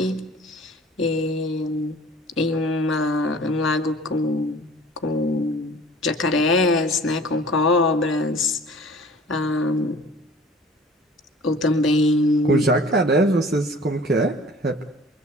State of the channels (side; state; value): both; normal; correlation 0.47